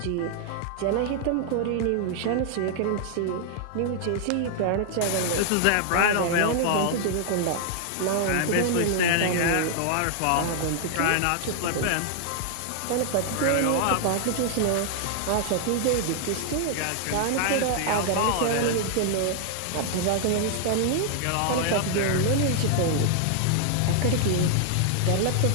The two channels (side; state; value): both; different; correlation 0.00